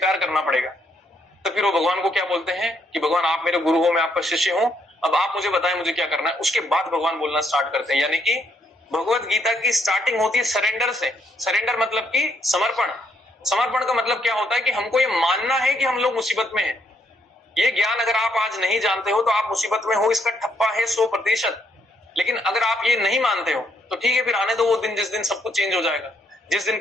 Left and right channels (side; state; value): both; normal; correlation 0.73